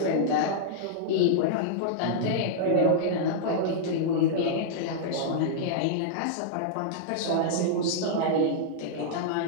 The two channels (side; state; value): both; different; correlation -0.02